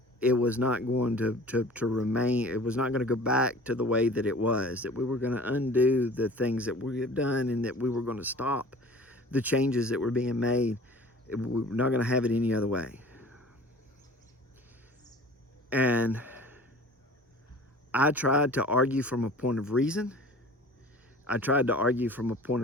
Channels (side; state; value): both; normal; correlation 0.44